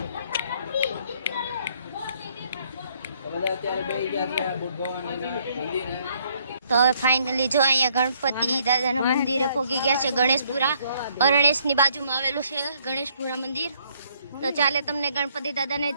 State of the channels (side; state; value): both; inverted; correlation -0.68